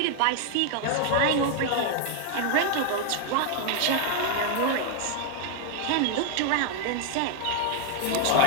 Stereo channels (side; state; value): both; different; correlation 0.00